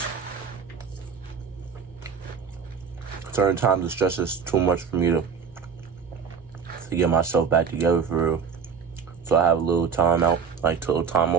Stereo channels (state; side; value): quieter; left; 6.3 dB